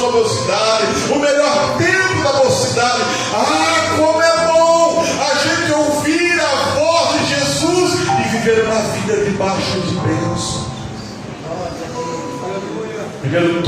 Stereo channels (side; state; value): both; identical; correlation 1.00